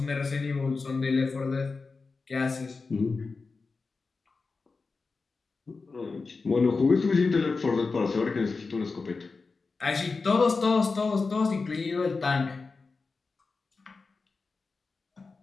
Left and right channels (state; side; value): quieter; right; 4.2 dB